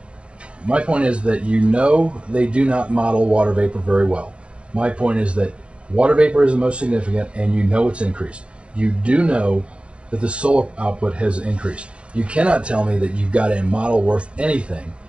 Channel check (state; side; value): late; left; 0.058 ms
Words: my point is that they do not model water vapor very well. My point is that water vapor is the most significant, and it's increased. You do know that the solar output has increased. You cannot tell me that you've got a model worth anything